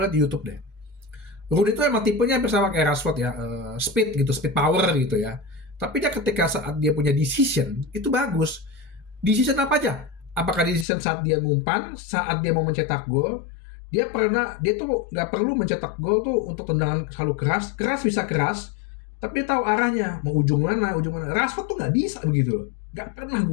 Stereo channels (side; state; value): right; drops out; at 10.9 s